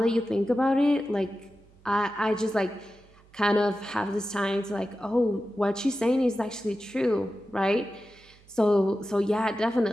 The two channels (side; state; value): right; noise; hum, 28 dB below the sound